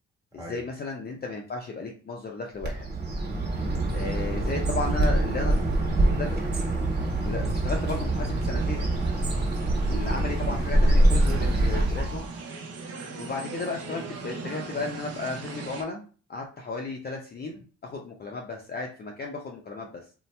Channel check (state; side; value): normal; both; correlation 0.74